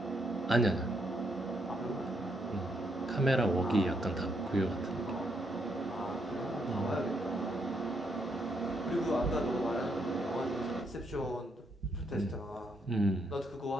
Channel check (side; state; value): both; normal; correlation 0.76